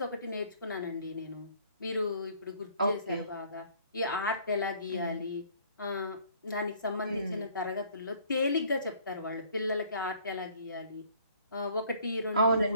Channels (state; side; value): inverted; both; correlation -0.58